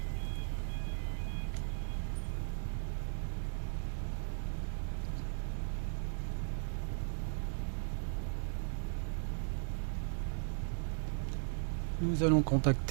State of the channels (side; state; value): left; silent; digital silence